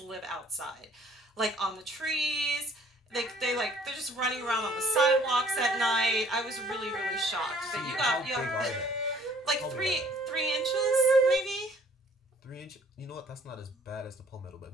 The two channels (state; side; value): normal; both; correlation 0.58